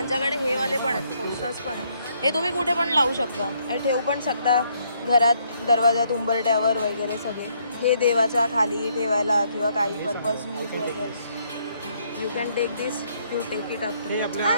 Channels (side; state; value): both; inverted; correlation -0.71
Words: हे वाले पण आहेत, पोस्टर्स पण आहेत. हे तुम्ही कुठे पण लावू शकता आणि ठेवू पण शकता घरात, दरवाजात, उंबरट्यावर वगैरे सगळे. हे देवाच्या खाली ठेवायला किंवा काही पर्पज यूज वगैरे. You can take this, you take it up.